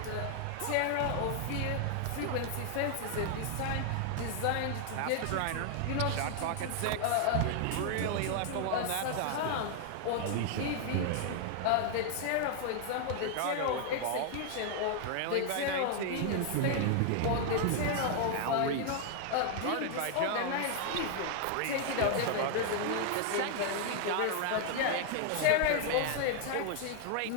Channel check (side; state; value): both; different; correlation 0.00